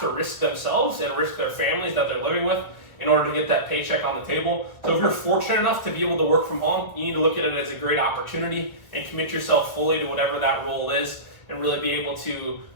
to risk themselves and risk their families that they're living with in order to get that paycheck on the table. So if you're fortunate enough to be able to work from home, you need to look at it as a great opportunity and commit yourself fully to whatever that role is, and really be able to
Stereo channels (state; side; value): late; right; 1.5 ms